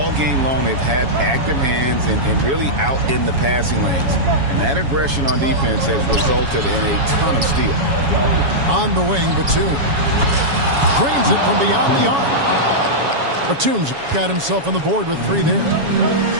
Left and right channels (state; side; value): late; left; 7.2 ms